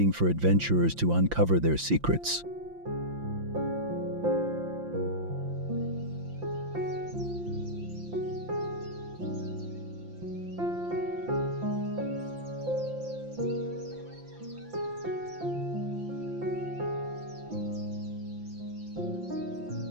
for adventurers to uncover their secrets.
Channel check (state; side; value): late; left; 5.8 ms